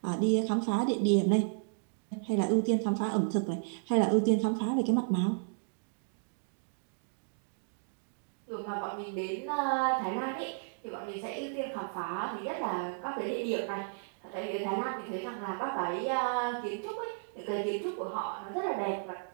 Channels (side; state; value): left; silent; digital silence